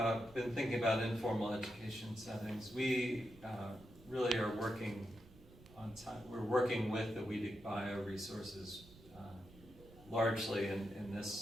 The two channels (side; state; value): right; noise; rumble, 21 dB below the sound